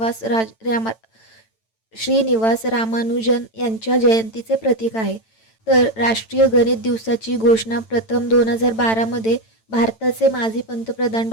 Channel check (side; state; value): right; late; 9.0 ms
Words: श्रीनिवास रामानुजन यांच्या जयंतीचे प्रतीक आहे. तर राष्ट्रीय गणित दिवसाची घोषणा प्रथम 2012मध्ये भारताचे माजी पंतप्रधान